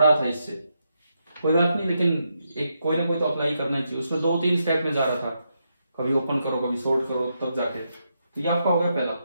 था इससे, कोई बात नहीं, लेकिन एक कोई ना कोई तो अप्लाई करना चाहिए। उसमें 2-3 स्टेप में जा रहा था, कभी ओपन करो कभी सॉर्ट करो तब जाके। तो ये आपका हो गया पहला।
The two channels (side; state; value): both; inverted; correlation -0.82